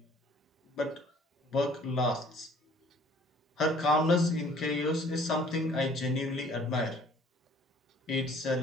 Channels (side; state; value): both; normal; correlation 0.55